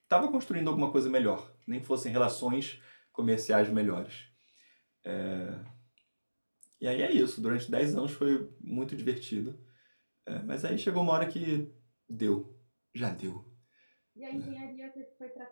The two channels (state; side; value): inverted; both; correlation -1.00